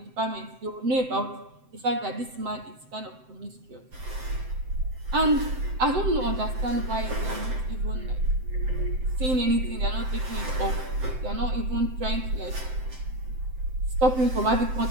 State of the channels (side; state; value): left; late; 7.8 ms